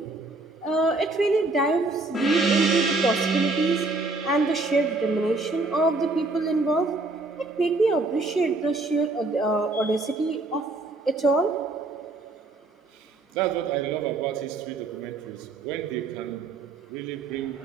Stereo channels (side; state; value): left; quieter; 3.2 dB